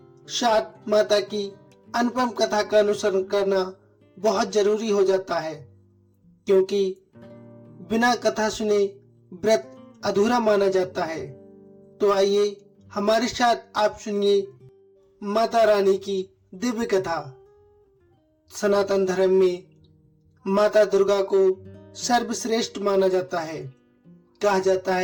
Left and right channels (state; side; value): identical; both; correlation 1.00